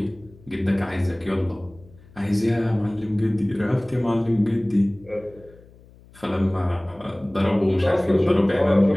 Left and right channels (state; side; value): noise; left; hum, 25 dB below the sound